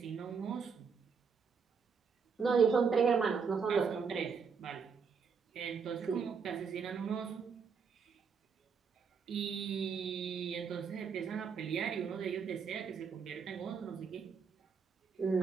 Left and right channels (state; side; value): quieter; left; 5.9 dB